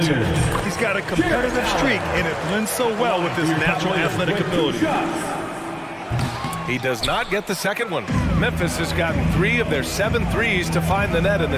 He's got a competitive streak, and it blends so well with his natural athletic ability. He does not get the second one. Memphis has gotten 3 of their 7 threes to find the net in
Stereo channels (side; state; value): both; identical; correlation 1.00